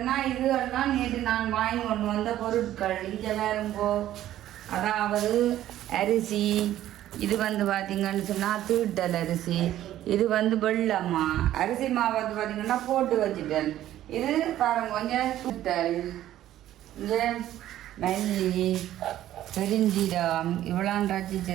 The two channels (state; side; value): quieter; left; 13.0 dB